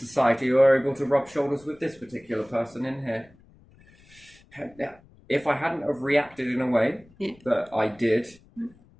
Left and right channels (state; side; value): noise; left; rumble, 28 dB below the sound